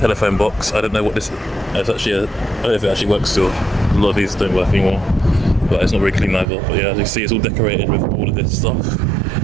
box. I don't know what this is. It's actually I don't know if it actually works still. A lot of these don't work anymore, but it's not very clean either. But yeah, as you can see, it's all decorated with all of this stuff. So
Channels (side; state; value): left; drops out; at 6.5 s